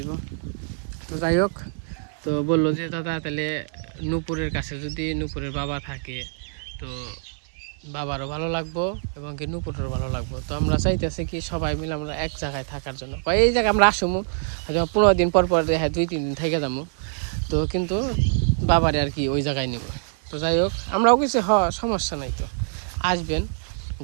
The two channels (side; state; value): left; silent; digital silence